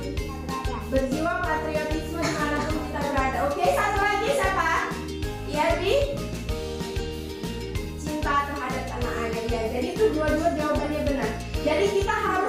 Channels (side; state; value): both; identical; correlation 1.00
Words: Berjiwa patriotisme dimanapun kita berada. Oke, satu lagi siapa? Yabi? Cinta terhadap tanah air. Ya, jadi itu dua-dua jawabannya benar. Jadi kita